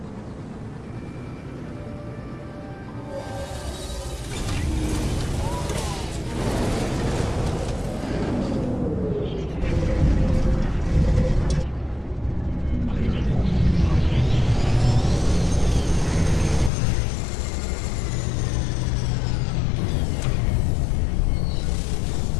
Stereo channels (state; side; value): drops out; right; at 16.7 s